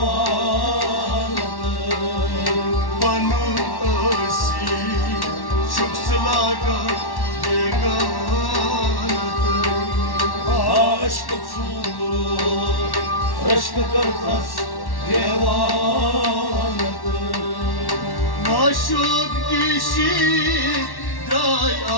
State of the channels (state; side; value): late; right; 1.1 ms